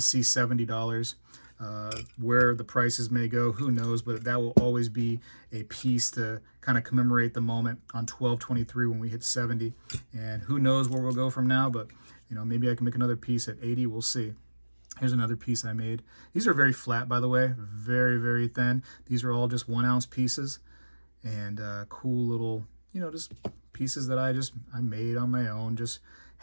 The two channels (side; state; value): both; inverted; correlation -1.00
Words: $70. Where the prices may go, who knows, but that will always be a piece to kind of commemorate the moment on 12/23 when we hit 70, and who knows where we'll go from now, but maybe I can make another piece at 80. We'll see. Here's another piece I made. These are very flat, by the way, very, very thin. These are all just 1 ounce pieces, and cool little, just pieces that I made on my own, just